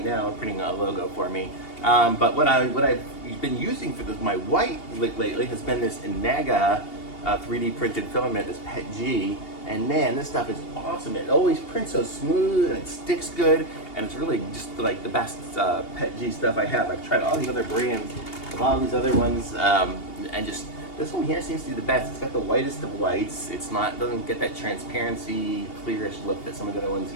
now, printing a logo for me. But what I've been using for my white lately has been this NAGA 3D printed filament, this PETG. And man, this stuff is awesome. It always prints so smooth and it sticks good, and it's really just like the best PETG stuff I have. I've tried all these other brands, all these other ones, and just this one here seems to be the best. It's got the whitest of whites. Doesn't get that transparency, clearish look that some of the other ones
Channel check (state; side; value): late; right; 2.8 ms